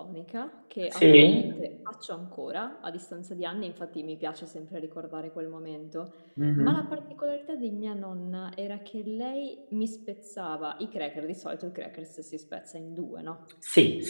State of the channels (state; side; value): inverted; both; correlation -1.00